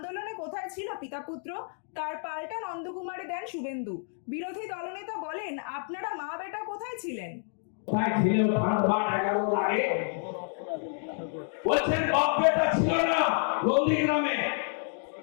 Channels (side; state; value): right; silent; 55 dB below the other